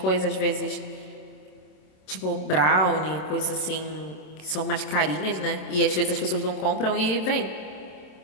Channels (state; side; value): late; right; 27 ms